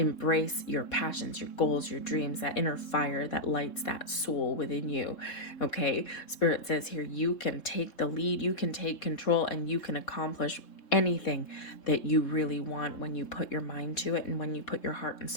your passions, your goals, your dreams, that inner fire that lights that soul within you, okay? Spirit says here, you can take the lead, you can take control, and you can accomplish anything that you really want when you put your mind to it and when you put your heart and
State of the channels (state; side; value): late; right; 3.7 ms